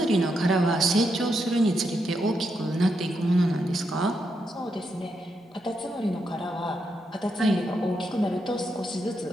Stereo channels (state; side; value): normal; both; correlation 0.82